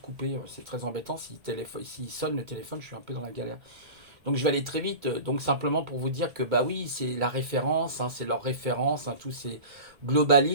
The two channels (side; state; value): left; late; 1.7 ms